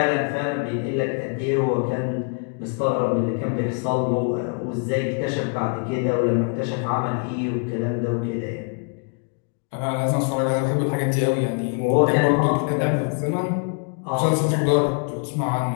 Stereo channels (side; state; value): right; quieter; 39.5 dB